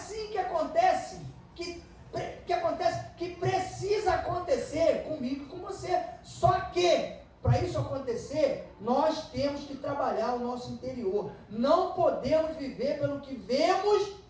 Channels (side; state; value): both; identical; correlation 1.00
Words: que acontece, que precisa acontecer comigo e com você. Só que, para isso acontecer, nós temos que trabalhar o nosso interior. Não podemos viver pelo que vemos,